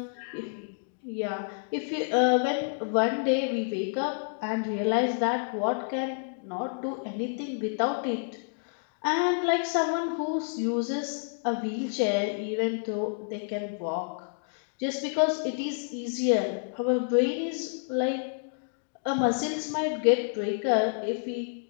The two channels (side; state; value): right; silent; digital silence